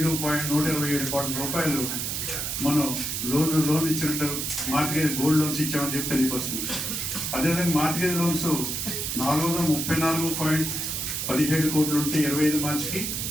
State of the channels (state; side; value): noise; right; hiss, 2 dB below the sound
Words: కోట్ల రూపాయలు మనం లోన్ ఇచ్చినట్టు మార్టిగేజ్ గోల్డ్ లోన్స్ ఇచ్చామని చెప్పి తెలియవస్తుంది. అదేవిధంగా మార్టిగేజ్ లోన్స్ 434.17 కోట్లు ఉంటే 25 మార్చికి